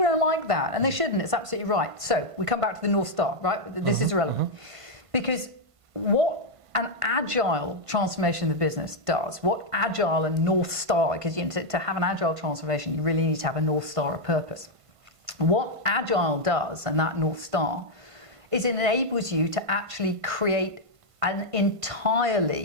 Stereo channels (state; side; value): late; left; 1.5 ms